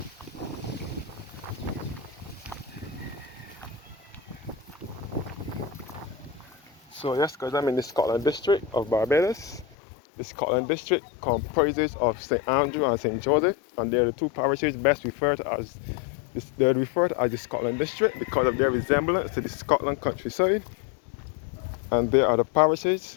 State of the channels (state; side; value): drops out; right; at 9.8 s